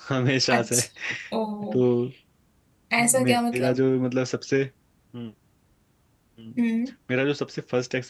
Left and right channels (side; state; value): both; identical; correlation 1.00